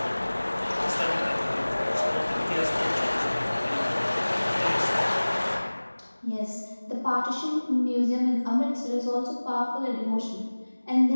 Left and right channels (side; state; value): both; inverted; correlation -1.00